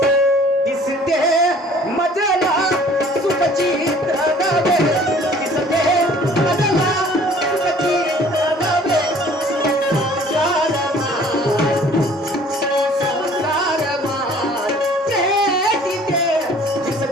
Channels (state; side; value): normal; both; correlation 0.53